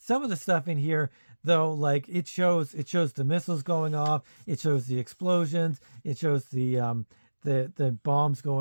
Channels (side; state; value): both; inverted; correlation -1.00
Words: of the stuff in here, though, like it shows the missiles going off, it shows the explosions, it shows the bombs